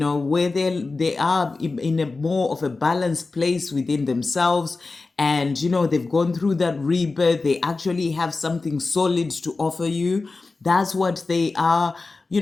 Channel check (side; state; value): right; quieter; 3.7 dB